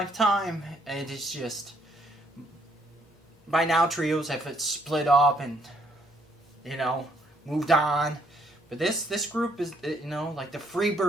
And it's just, by now trios have split up and moved on. But this group is like the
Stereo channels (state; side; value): normal; both; correlation 0.68